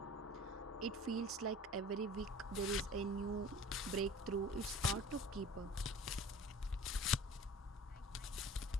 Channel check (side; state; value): both; normal; correlation 0.43